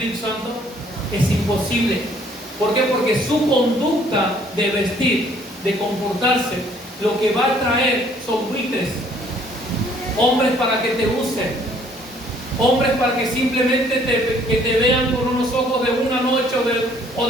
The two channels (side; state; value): both; normal; correlation 0.61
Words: Santo? Es imposible. ¿Por qué? Porque su conducta de vestir, de comportarse, lo que va a traer son buitres, hombres para que te usen, hombres para que simplemente te vean con unos ojos de una noche o